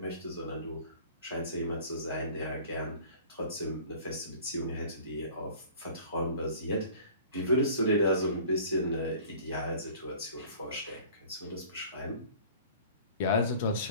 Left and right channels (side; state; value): both; inverted; correlation -0.47